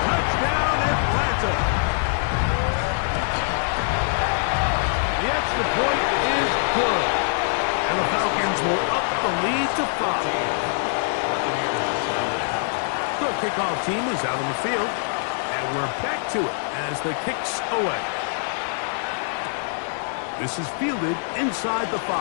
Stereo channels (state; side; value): silent; right; digital silence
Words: Touchdown, Atlanta. The extra point is good. And the Falcons will up the lead to 5. The kickoff team is out on the field. And we're back to it as the kick's away. This is fielded inside the